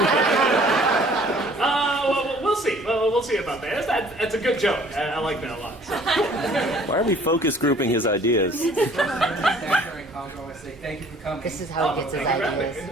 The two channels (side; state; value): both; normal; correlation 0.55